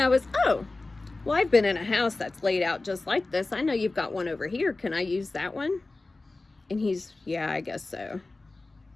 I was, oh, well, I've been in a house that's laid out just like this. I know you've got one over here. Can I use that one? And he's, yeah, I guess so.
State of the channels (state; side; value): quieter; right; 3.2 dB